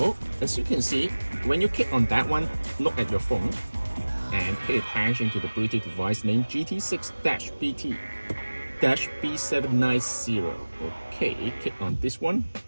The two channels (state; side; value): inverted; both; correlation -1.00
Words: as you can see, when you click on that one, look at your phone and pay attention to the Bluetooth device name GT6-BT-B790. Okay, click on this one.